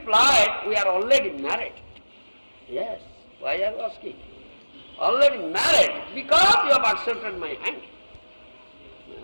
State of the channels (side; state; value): both; inverted; correlation -1.00